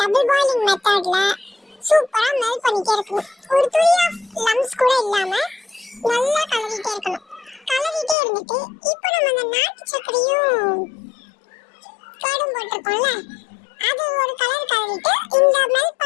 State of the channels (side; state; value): right; drops out; at 8.2 s